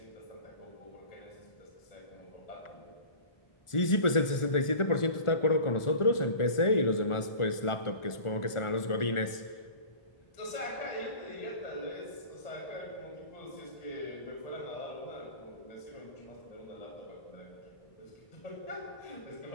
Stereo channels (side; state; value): right; late; 1.4 ms